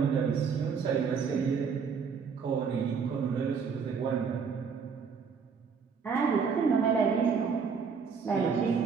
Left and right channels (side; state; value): left; quieter; 5.9 dB